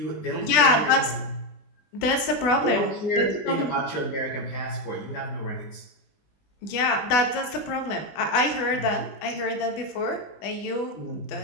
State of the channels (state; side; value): late; right; 20 ms